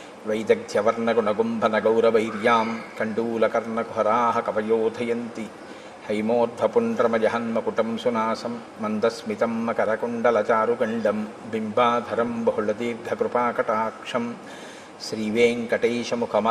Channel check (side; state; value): both; identical; correlation 1.00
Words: వైదగ్ధ్యవర్ణగుణగుంభనగౌరవైర్యాం కండూలకర్ణకుహరాः కవయోధయంతి. హైమోర్ధ్వపుండ్రమజహన్మకుటం సునాసం మందస్మితం మకరకుండలచారుగండం బింబాధరం బహుళదీర్ఘకృపాకటాక్షం